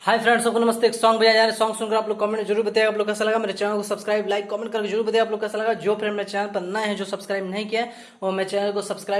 हाय फ्रेंड्स, सबको नमस्ते। एक सॉन्ग बजाया जा रहा है। सॉन्ग सुनकर आप लोग कमेंट में जरूर बताइएगा आप लोग कैसा लगा। मेरे चैनल को सब्सक्राइब, लाइक, कमेंट करके जरूर बताइए आप लोग कैसा लगा। जो फ्रेंड मेरे चैनल पर नए हैं, जो सब्सक्राइब नहीं किया है, वो मेरे चैनल को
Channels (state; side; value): identical; both; correlation 1.00